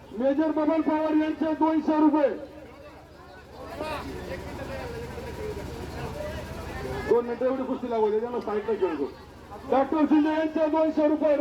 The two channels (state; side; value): identical; both; correlation 1.00